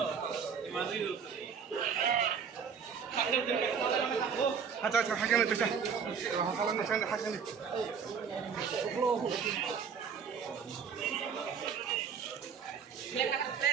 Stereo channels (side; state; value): left; quieter; 6.6 dB